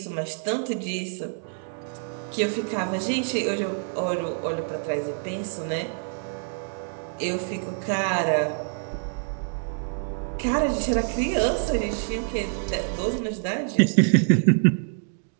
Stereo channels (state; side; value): silent; left; 61 dB below the other